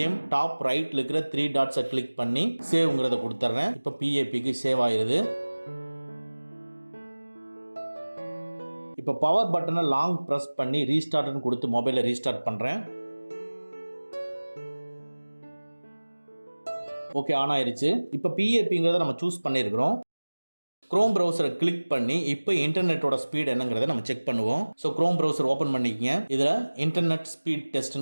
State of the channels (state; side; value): inverted; both; correlation -1.00